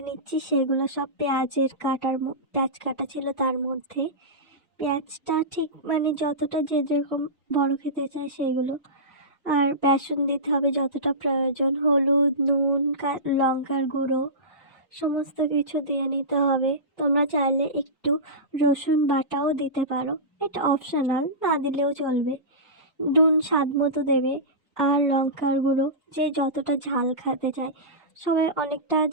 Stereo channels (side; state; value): both; normal; correlation -0.19